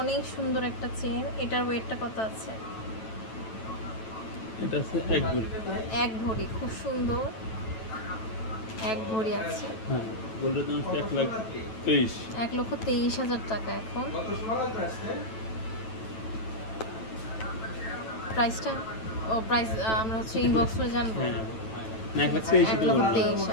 সুন্দর একটা চেইন। এটার ওয়েটটা কত আছে? এটা আছে এক ভরি, খুব সুন্দর এক ভরি আছে। হ্যাঁ, গোল্ডের দাম 1,23,000 টাকা। এখন প্রাইসটা প্রাইস আমরা হচ্ছে ইনবক্স করে জানবো। হ্যাঁ, 1,23,000।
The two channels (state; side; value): late; right; 9.1 ms